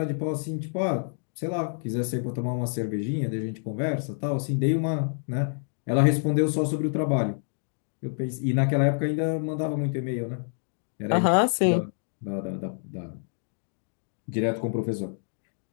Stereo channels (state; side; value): silent; right; 58 dB below the other